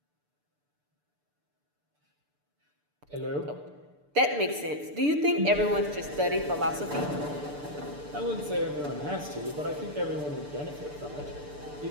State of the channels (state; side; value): late; left; 6.8 ms